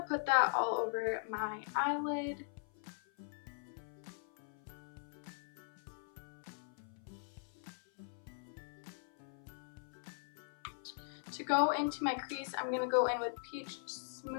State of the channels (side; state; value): right; silent; 51 dB below the other